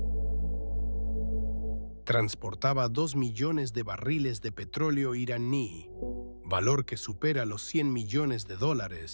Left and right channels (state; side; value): inverted; both; correlation -1.00